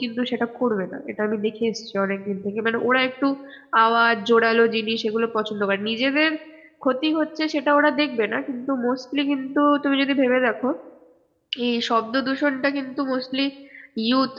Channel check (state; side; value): identical; both; correlation 1.00